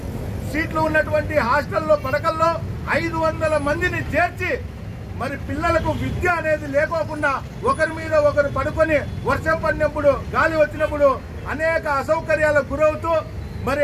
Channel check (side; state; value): both; identical; correlation 1.00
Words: సీట్లు ఉన్నటువంటి హాస్టల్లో పడకల్లో 500 మందిని చేర్చి మరి పిల్లలకు విద్య అనేది లేకోకుండా ఒకరి మీద ఒకరు పడుకొని వర్షం పడినప్పుడు గాలి వచ్చినప్పుడు అనేక అసౌకర్యాలకు గురవుతూ మరి